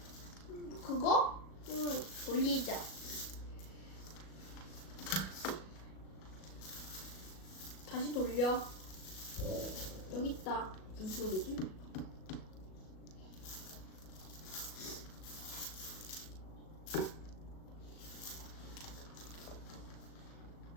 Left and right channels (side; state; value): right; late; 37 ms